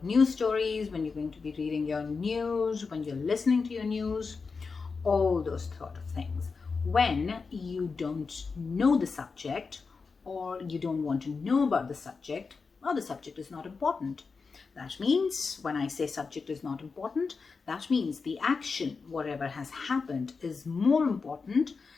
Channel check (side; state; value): right; quieter; 4.8 dB